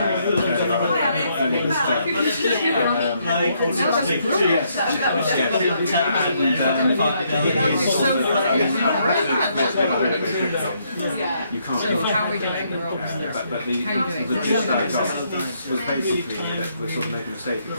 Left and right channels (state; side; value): inverted; both; correlation -0.73